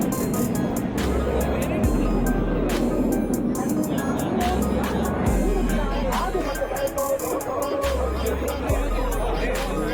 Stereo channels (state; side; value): identical; both; correlation 1.00